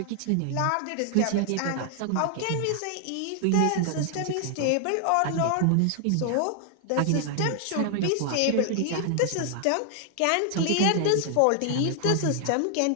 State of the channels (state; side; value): different; both; correlation 0.00